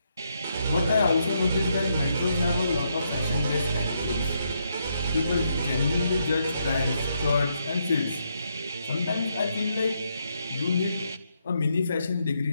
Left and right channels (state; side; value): inverted; both; correlation -0.78